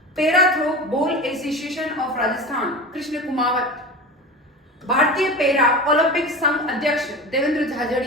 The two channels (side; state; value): both; normal; correlation 0.30